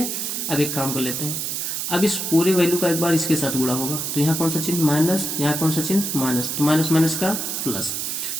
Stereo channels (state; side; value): noise; right; hiss, 2 dB below the sound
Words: अब एक काम कर लेते हैं, अब इस पूरे वैल्यू का एक बार इसके साथ गुणा होगा तो यहाँ कौन सा चिन्ह? माइनस। यहाँ कौन सा चिन्ह? माइनस। तो माइनस माइनस का प्लस।